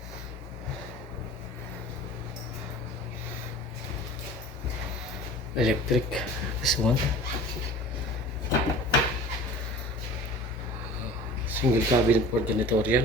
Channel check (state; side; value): normal; both; correlation 0.41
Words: Electric. This one. Single cabinet for